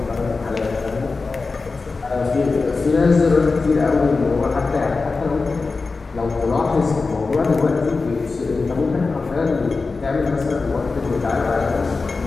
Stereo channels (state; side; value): quieter; right; 4.1 dB